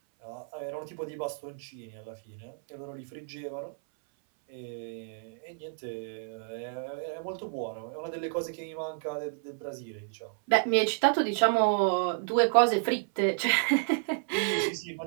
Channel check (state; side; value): silent; left; 57 dB below the other